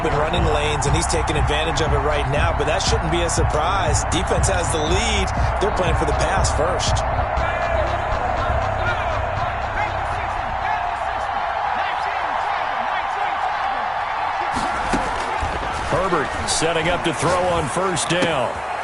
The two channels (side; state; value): both; identical; correlation 1.00